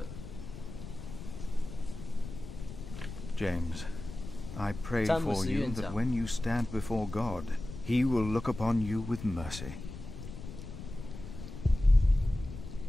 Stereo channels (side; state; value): left; noise; rumble, 11 dB below the sound